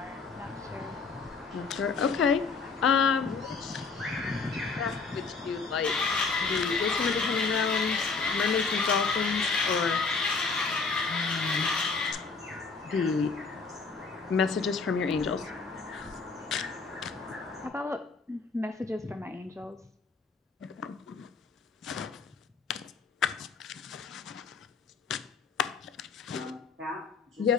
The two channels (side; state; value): right; quieter; 4.7 dB